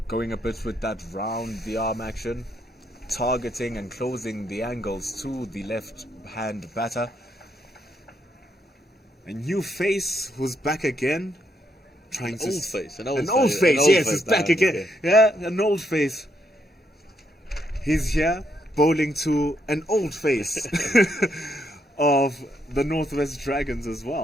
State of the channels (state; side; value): normal; both; correlation 0.76